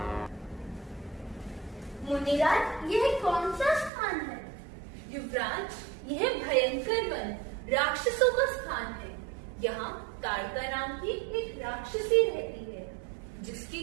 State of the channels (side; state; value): left; drops out; at 3.9 s